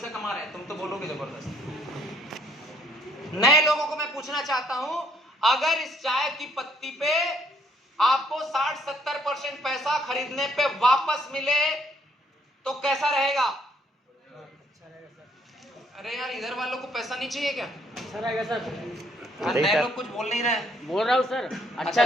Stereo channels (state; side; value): normal; both; correlation 0.66